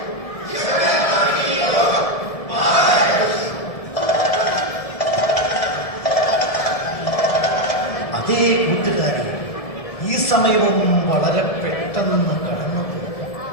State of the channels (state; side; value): late; right; 1.7 ms